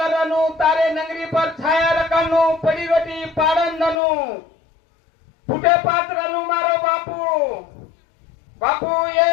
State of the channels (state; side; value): drops out; right; at 4.0 s